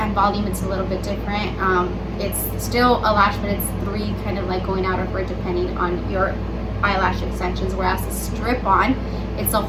and volume, it's a little bit different. It's still a lash, but it's three kind of like going out of it depending on your eyelash extensions, whereas the strip-on, it's a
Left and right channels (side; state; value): both; identical; correlation 1.00